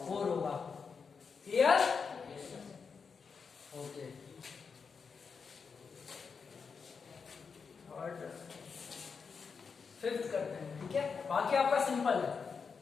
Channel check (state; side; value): quieter; right; 5.6 dB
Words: 4 होगा। क्लियर? ओके। और फिफ्थ करते हैं, ठीक है। बाकी आपका सिंपल है,